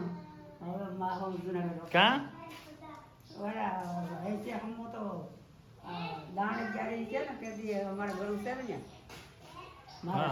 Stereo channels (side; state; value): both; identical; correlation 1.00